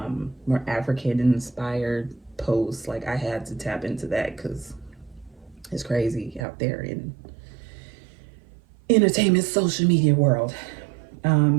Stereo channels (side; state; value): left; drops out; at 6.5 s